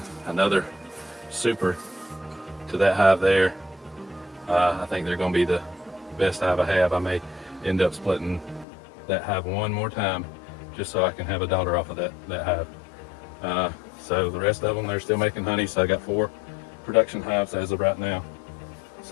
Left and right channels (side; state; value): right; drops out; at 8.7 s